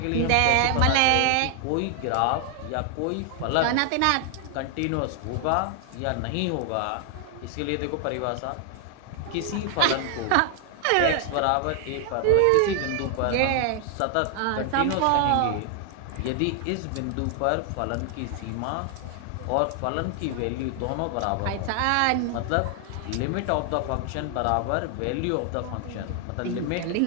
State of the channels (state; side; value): different; both; correlation 0.00